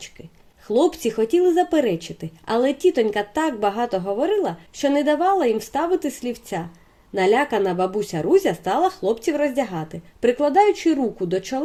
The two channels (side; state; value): both; identical; correlation 1.00